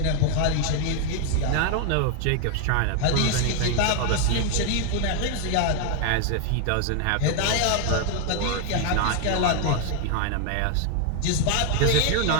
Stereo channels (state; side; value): different; both; correlation 0.01